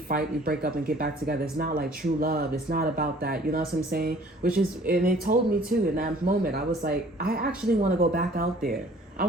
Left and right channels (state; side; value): normal; both; correlation 0.54